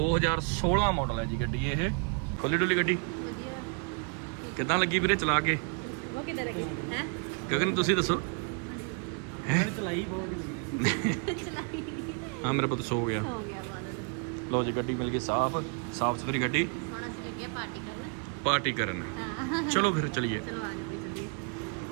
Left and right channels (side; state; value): left; quieter; 35.6 dB